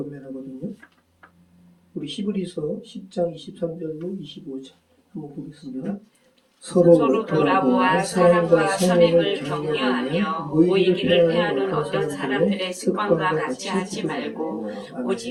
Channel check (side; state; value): both; identical; correlation 1.00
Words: 우리 히브리서 10장 23절로 25절 한번 보겠습니다. 서로 돌아보아 사랑과 선행을 격려하며 모이기를 패하는 어떤 사람들의 습관과 같이 하지 말고